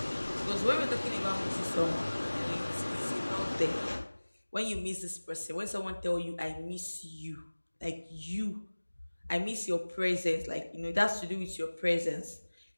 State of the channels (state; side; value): inverted; both; correlation -1.00